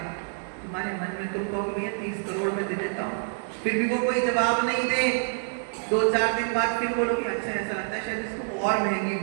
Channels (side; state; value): left; silent; 60 dB below the other